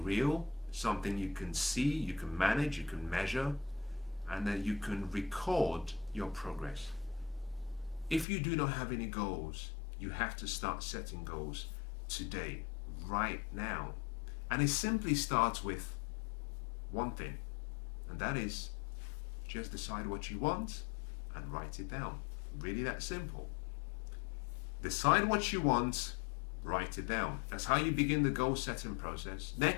real, something you can see, you can manage, you can measure, and then you can record your progress. If you do not have any goals, you have to start setting goals today, right now. And it simply starts with one thing, and that is just decide what you want and write it down. Really that simple. Decide what you want, write it down. That's how you begin the goal setting process.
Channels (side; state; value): right; drops out; at 8.2 s